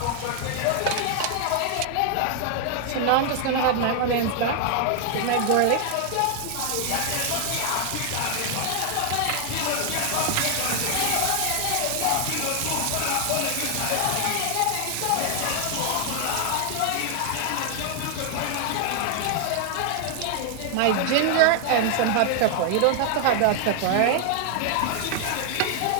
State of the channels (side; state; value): both; different; correlation 0.00